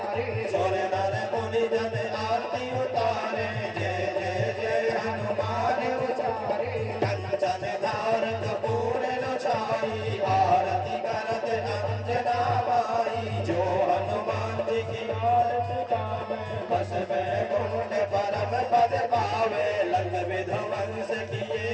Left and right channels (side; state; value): both; identical; correlation 1.00